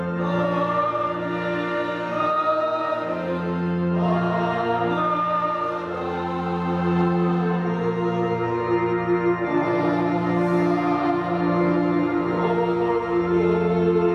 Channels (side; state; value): both; identical; correlation 1.00